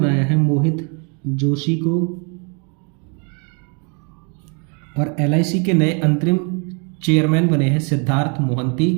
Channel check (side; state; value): left; quieter; 36.3 dB